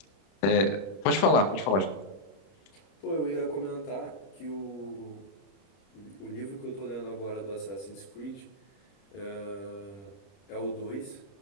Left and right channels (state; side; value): late; right; 31 ms